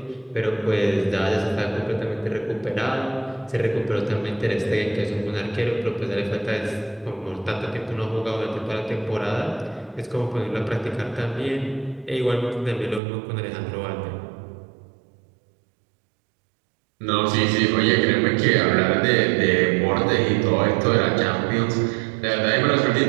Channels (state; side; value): drops out; left; at 13.0 s